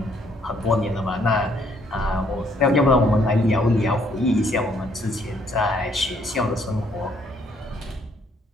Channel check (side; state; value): both; normal; correlation 0.67